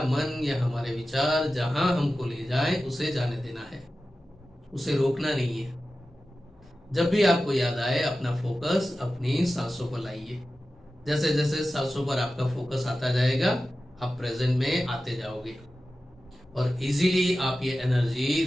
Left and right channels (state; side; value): normal; both; correlation 0.94